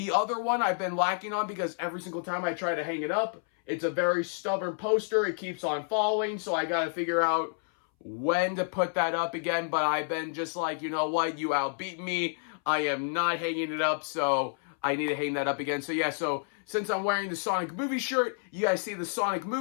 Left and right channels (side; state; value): right; silent; 58 dB below the other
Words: other one I've been lacking on because every single time I try to hang it up, it's a very stubborn poster. It keeps on falling, so I gotta figure out when to put that up again. But I've been just like, you know what, you outbeat me. I am not hanging it up, so I need to hang that up again. So yeah, so since I'm wearing the Sonic Movie shirt, you guys see the Sonic